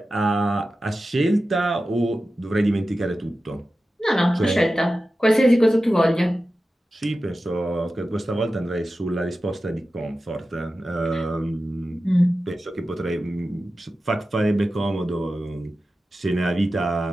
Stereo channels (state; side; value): normal; both; correlation 0.93